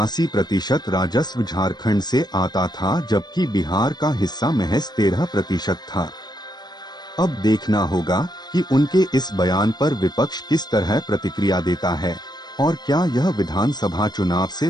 राजस्व झारखंड से आता था, जबकि बिहार का हिस्सा महज 13% था। अब देखना होगा कि उनके इस बयान पर विपक्ष किस तरह प्रतिक्रिया देता है और क्या यह विधानसभा चुनाव से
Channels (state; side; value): late; right; 0.20 ms